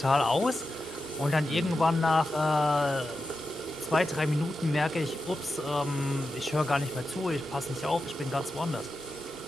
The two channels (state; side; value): normal; both; correlation 0.90